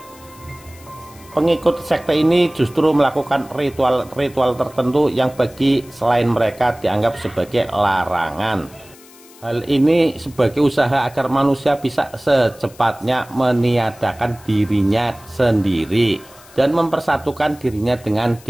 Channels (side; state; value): left; noise; hiss, 24 dB below the sound